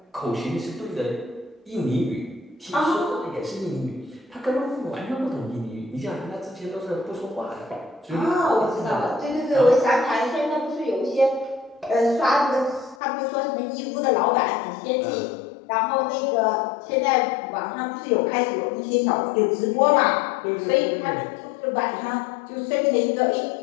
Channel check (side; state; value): right; drops out; at 13.0 s